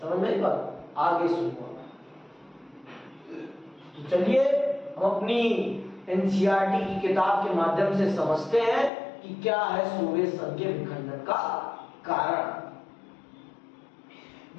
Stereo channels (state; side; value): drops out; right; at 8.9 s